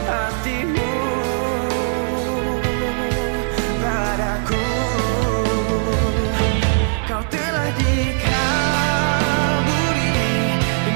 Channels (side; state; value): left; silent; digital silence